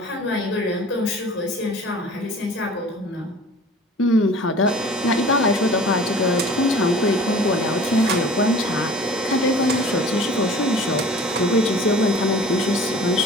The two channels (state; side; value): normal; both; correlation 0.44